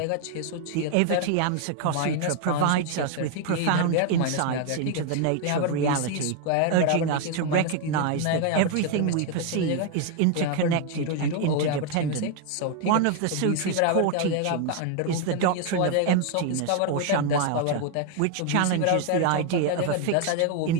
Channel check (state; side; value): different; both; correlation 0.01